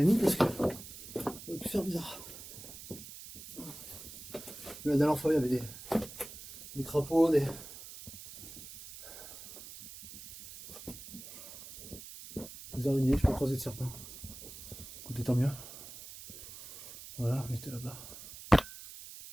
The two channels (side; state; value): right; noise; hiss, 14 dB below the sound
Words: parce que ça aurait pu faire bizarre. La dernière fois il y avait des crapauds, des araignées, je peux croiser de serpents. Écoutez, tant mieux. Voilà, on était là-bas.